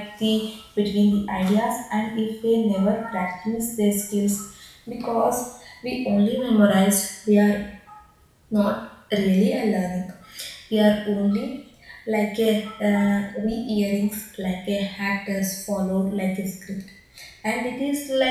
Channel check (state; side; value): identical; both; correlation 1.00